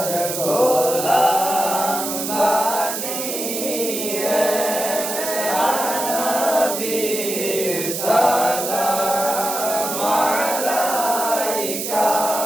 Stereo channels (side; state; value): right; noise; hiss, 4 dB below the sound